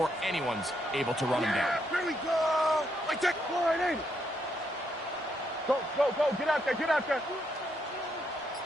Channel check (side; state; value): both; normal; correlation 0.77